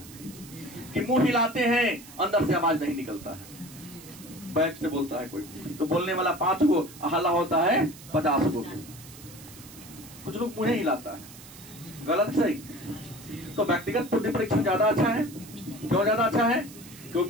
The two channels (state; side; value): noise; right; hiss, 18 dB below the sound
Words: कि मुंह हिलाते हैं, अंदर से आवाज नहीं निकलता है, बैक से बोलता है कोई तो बोलने वाला 5 गो, हल्ला होता है 50 गो। कुछ लोग मुंह हिलाता है, गलत सही। तो व्यक्तिगत बुद्धि परीक्षण ज्यादा अच्छा है। क्यों ज्यादा अच्छा है?